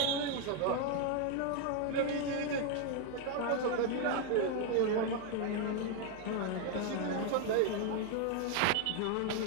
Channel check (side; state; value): both; different; correlation 0.01